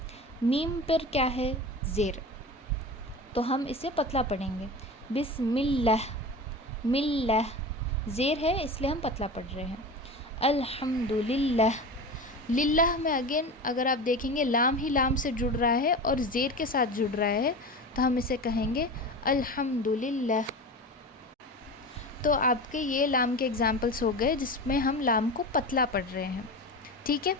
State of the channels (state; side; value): normal; both; correlation 0.29